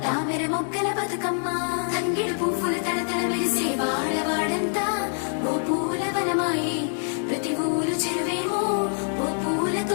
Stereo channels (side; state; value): right; silent; digital silence